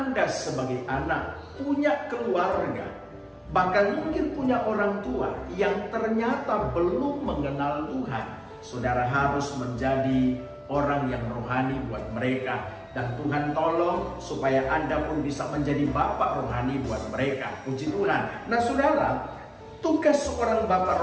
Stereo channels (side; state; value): both; identical; correlation 1.00